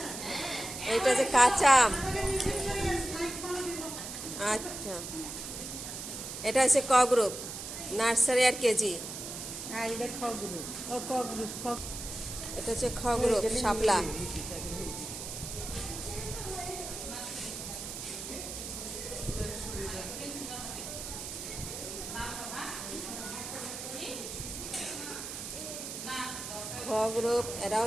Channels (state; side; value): noise; right; hiss, 8 dB below the sound